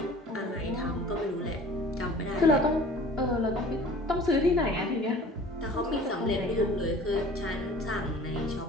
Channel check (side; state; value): both; normal; correlation 0.46